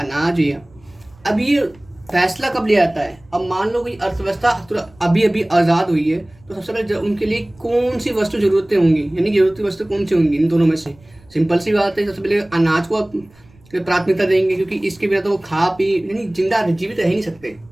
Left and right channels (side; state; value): right; noise; rumble, 28 dB below the sound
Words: अनाज है। अब ये फैसला कब लिया जाता है, अब मान लो कोई अर्थव्यवस्था अभी अभी आज़ाद हुई है, तो सबसे पहले उनके लिए कौन सी वस्तु जरूरतें होंगी, यानी जरूरती वस्तु कौन सी होंगी इन दोनों में से। सिंपल सी बात है, सबसे पहले अनाज को प्राथमिकता देंगे, क्योंकि इसके बिना तो वो खा पी यानी जिंदा जीवित रह ही नहीं सकते।